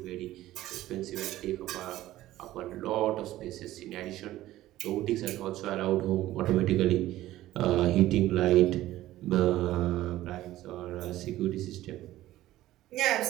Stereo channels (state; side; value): quieter; left; 15.1 dB